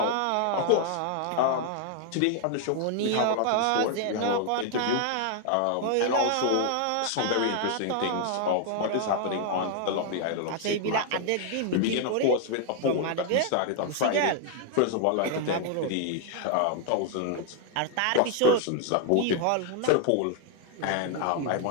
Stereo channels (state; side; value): different; both; correlation 0.00